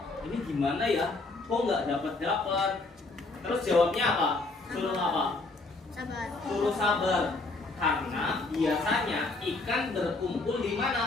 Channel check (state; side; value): quieter; right; 3.3 dB